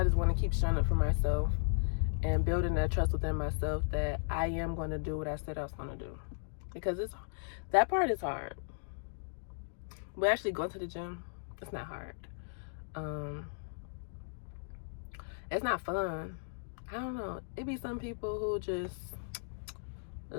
just want to keep showing up for myself and building that trust within myself that I am going to do what I said I was going to do. Because that part is hard. But actually going to the gym, it's not hard. It's not fun. I don't know. It be some people who just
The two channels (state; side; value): silent; right; digital silence